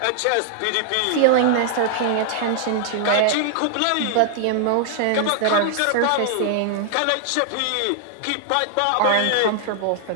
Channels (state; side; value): different; both; correlation -0.01